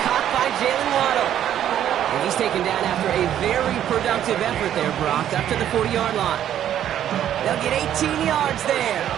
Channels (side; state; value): left; quieter; 10.8 dB